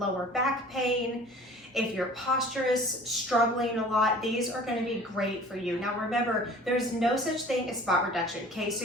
back pain, if your posture is struggling a lot, these are going to be great for you. Now remember, there's no such thing as spot reduction. Okay,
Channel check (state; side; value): normal; both; correlation 0.46